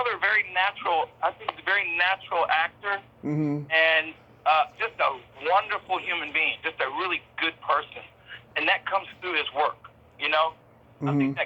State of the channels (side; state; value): both; identical; correlation 1.00